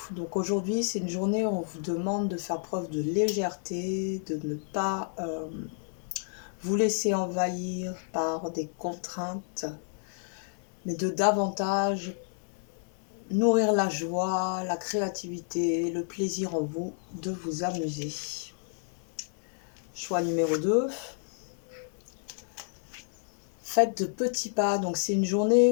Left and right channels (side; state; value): right; silent; digital silence